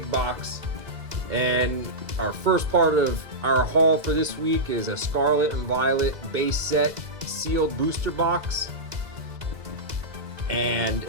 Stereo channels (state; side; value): late; left; 2.0 ms